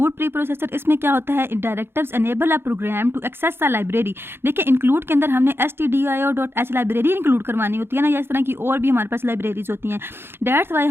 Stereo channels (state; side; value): late; left; 0.11 ms